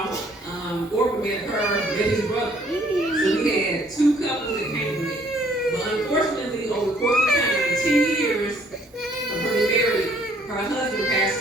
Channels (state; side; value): normal; both; correlation 0.63